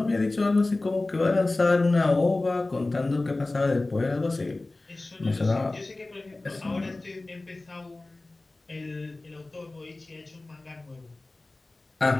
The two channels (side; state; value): right; quieter; 3.0 dB